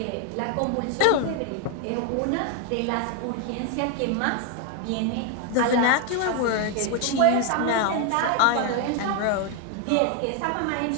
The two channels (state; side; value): different; both; correlation 0.00